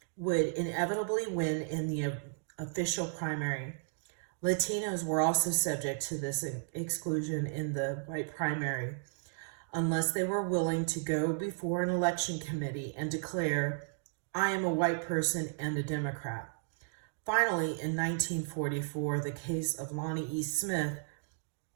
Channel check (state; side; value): silent; left; digital silence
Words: would inevitably win in the official primary. Latinos were also subject to this exclusion in the white primary, unless they were willing to go before an election committee and declare, "I am a white person and a Democrat." Finally, in 1944, the case of Lonnie E. Smith,